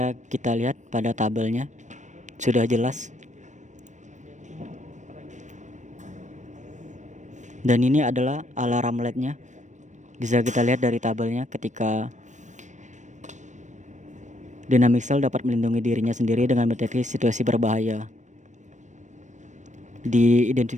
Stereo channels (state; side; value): late; left; 0.35 ms